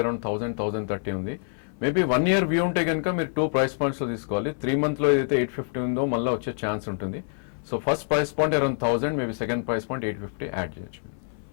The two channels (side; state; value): right; silent; 59 dB below the other